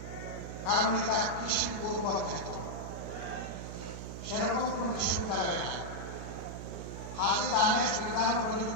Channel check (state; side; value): noise; right; hum, 8 dB below the sound